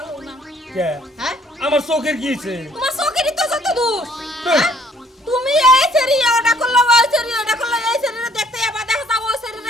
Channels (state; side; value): normal; both; correlation 0.62